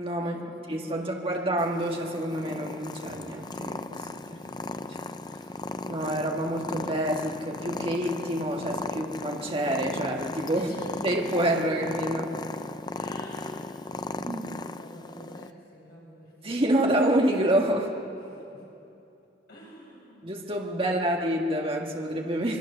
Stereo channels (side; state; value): both; normal; correlation 0.50